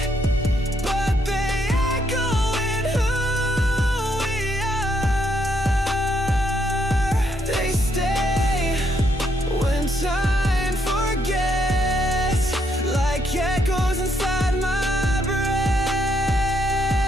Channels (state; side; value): normal; both; correlation 0.74